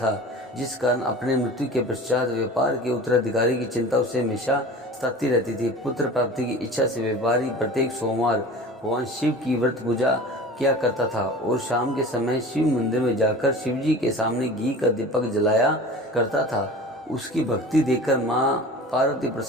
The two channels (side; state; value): both; normal; correlation 0.38